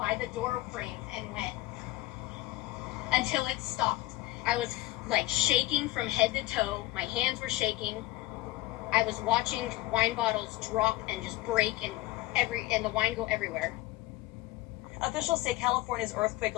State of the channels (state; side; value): quieter; right; 18.0 dB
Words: the door frame and went until it stopped. I was like shaking from head to toe. My hands were shaking. I was watching wine bottles drop and just break and the wine go everywhere. Officials say California's earthquake